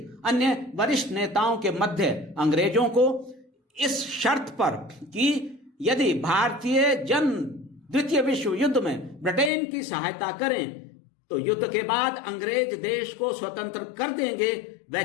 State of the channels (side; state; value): right; drops out; at 9.5 s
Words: अन्य वरिष्ठ नेताओं के मध्य अंग्रेजों को इस शर्त पर कि यदि भारतीय जन द्वितीय विश्व युद्ध में ब्रिटेन की सहायता करें तो युद्ध के बाद अंग्रेज देश को स्वतंत्र कर देंगे,